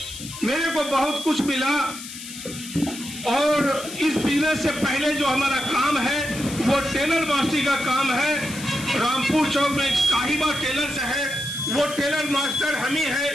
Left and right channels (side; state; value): left; noise; hiss, 12 dB below the sound